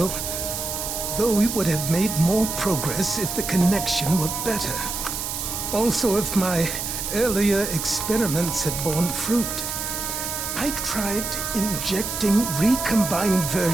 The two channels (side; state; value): right; noise; hiss, 4 dB below the sound